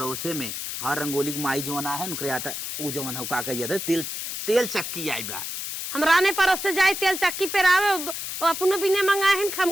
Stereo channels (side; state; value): left; noise; hiss, 5 dB below the sound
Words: में हाँ रंगोली की माई जोना है उनके आटा वो जोन हो का कहिए तेल तेल चक्की आई बा हमरा ने पड़ोस से जाए तेल चक्की पेरावे अपनो बिने मंगाए हैं